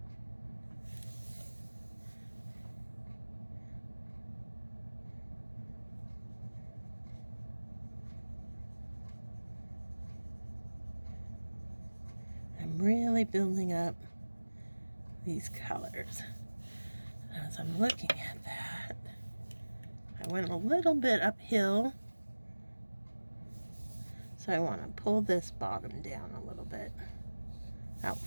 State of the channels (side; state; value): both; inverted; correlation -1.00